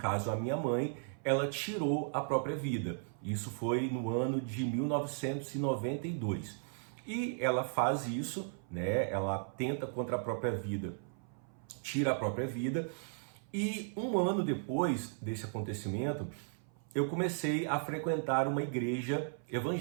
a minha mãe, ela tirou a própria vida. Isso foi no ano de 1992. E ela faz isso, né? Ela tenta contra a própria vida, tira a própria vida. E um ano depois desse acontecimento, eu comecei a frequentar uma igreja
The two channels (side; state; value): left; silent; 54 dB below the other